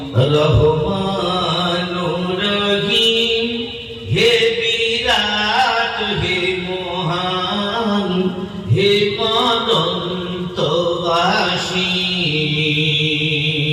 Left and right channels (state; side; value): identical; both; correlation 1.00